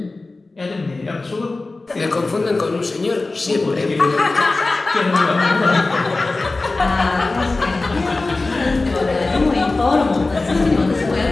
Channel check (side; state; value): right; quieter; 3.3 dB